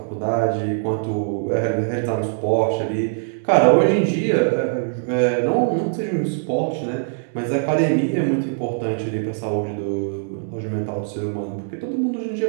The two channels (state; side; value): silent; left; digital silence